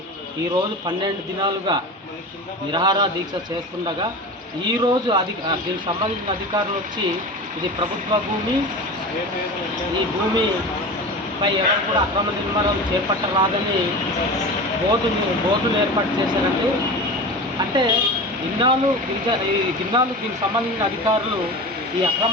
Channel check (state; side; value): normal; both; correlation 0.31